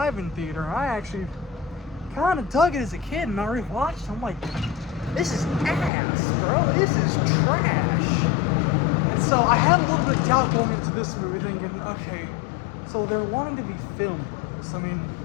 theater and I actually kind of dug it as a kid, and I rewatched it. I'm like, this is ass, bro, this is trash. And so I had a little bit of doubt going into this movie, thinking, okay, so they're wanting to be film bros. I mean,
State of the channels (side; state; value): right; drops out; at 5.9 s